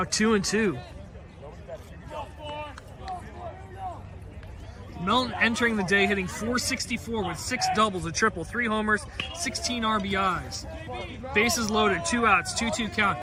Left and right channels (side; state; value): both; identical; correlation 1.00